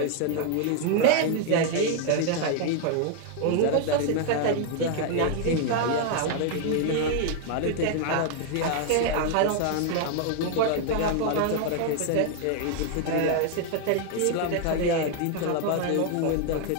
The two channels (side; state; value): both; different; correlation 0.00